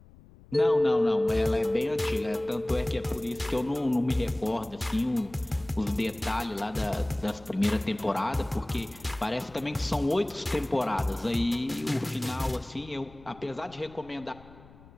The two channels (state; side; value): noise; left; rumble, 22 dB below the sound